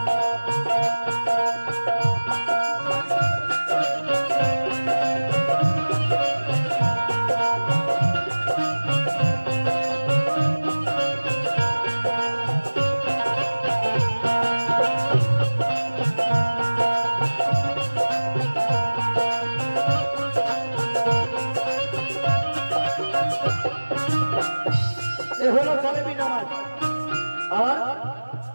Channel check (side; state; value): both; inverted; correlation -1.00